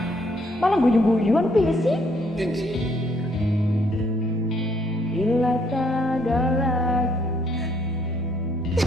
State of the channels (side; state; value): both; normal; correlation 0.69